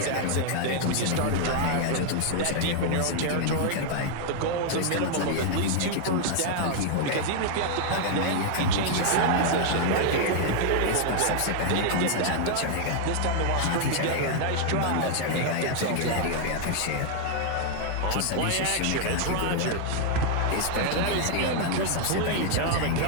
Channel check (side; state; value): both; different; correlation 0.00